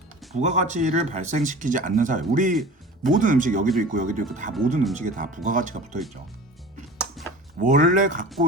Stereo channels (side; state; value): both; normal; correlation 0.39